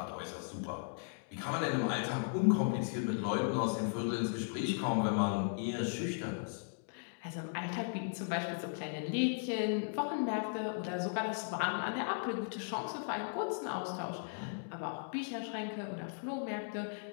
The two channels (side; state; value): right; silent; digital silence